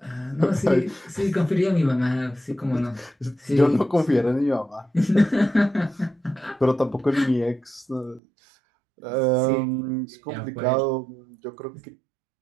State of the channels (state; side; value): drops out; left; at 8.2 s